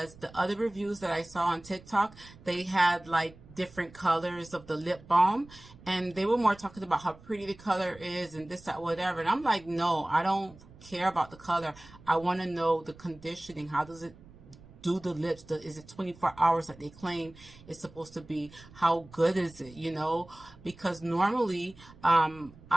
the other reviews that I saw on TikTok, they had like different colors of the lip balm, and they were more talking about how pretty the color is and this, that, whatever. And I'm like, no, I don't care about the color. I want to know the conditioning. How does it do the lips? Is it 24 hours like they claim it's supposed to be? How good is it, you know? Because normally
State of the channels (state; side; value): noise; right; rumble, 22 dB below the sound